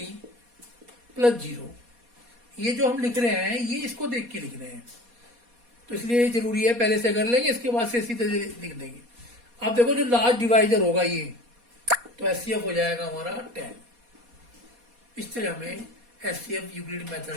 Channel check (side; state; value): left; late; 4.2 ms